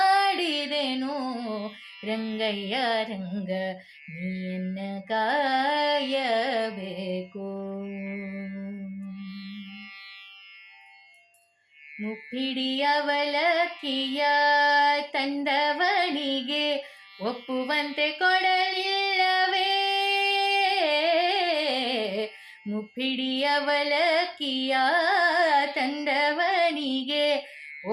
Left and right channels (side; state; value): both; identical; correlation 1.00